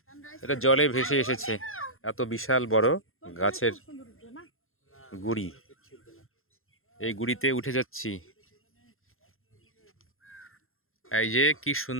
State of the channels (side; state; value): right; late; 0.61 ms